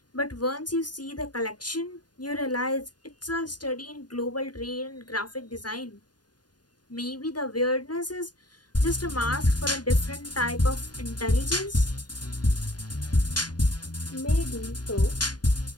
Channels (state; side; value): late; right; 0.69 ms